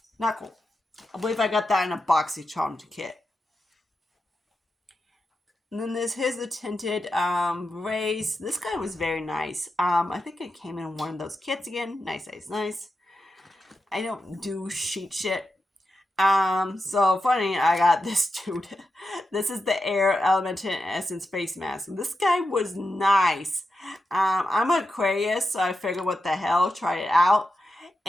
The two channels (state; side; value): normal; both; correlation 0.89